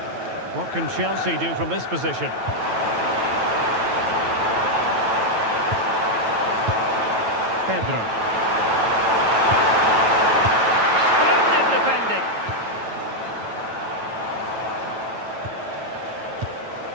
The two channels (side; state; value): left; late; 9.1 ms